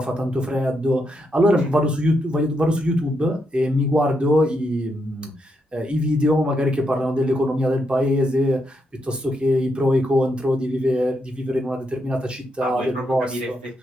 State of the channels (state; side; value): normal; both; correlation 0.81